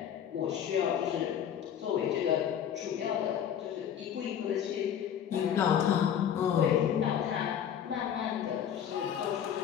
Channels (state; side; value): quieter; right; 9.1 dB